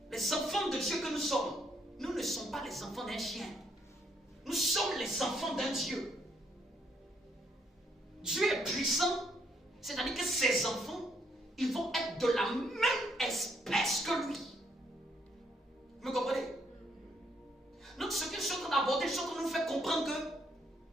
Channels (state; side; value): normal; both; correlation 0.72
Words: les enfants de Dieu que nous sommes, nous ne sommes pas les enfants d'un chien. Nous sommes les enfants d'un Dieu. Dieu est puissant, c'est-à-dire que ses enfants, ils vont être de la même espèce que lui. Vous me comprenez? Donc ce que je suis en train d'aborder, je suis en train de nous faire comprendre